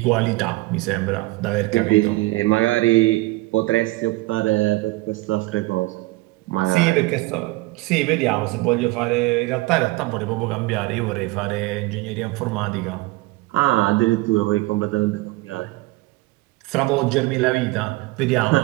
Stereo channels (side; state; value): left; quieter; 21.0 dB